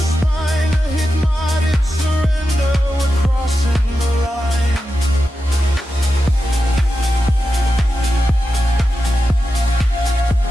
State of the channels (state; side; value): normal; both; correlation 0.90